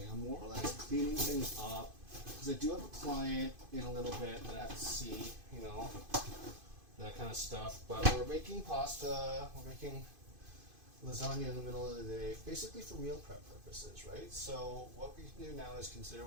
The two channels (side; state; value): left; late; 2.5 ms